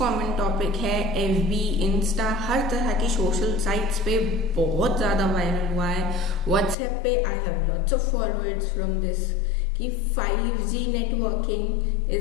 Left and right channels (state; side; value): drops out; right; at 6.8 s